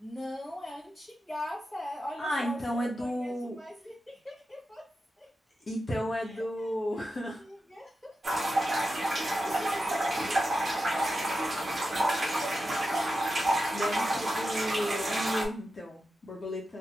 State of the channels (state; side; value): normal; both; correlation 0.90